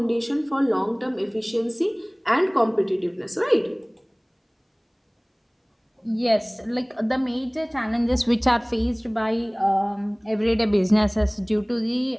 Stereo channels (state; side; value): identical; both; correlation 1.00